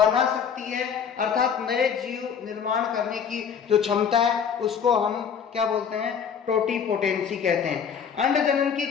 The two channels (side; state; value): right; quieter; 7.2 dB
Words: सकती है, अर्थात नए जीव निर्माण करने की जो क्षमता है उसको हम क्या बोलते हैं, टोटिपोटेंसी कहते हैं। अंडजनन की